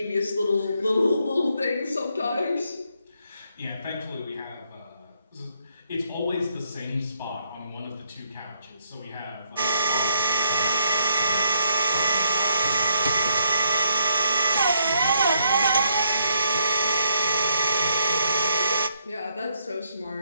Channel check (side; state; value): both; inverted; correlation -0.73